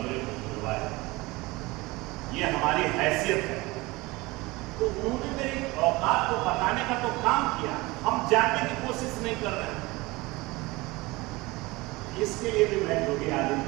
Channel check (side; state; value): left; quieter; 22.2 dB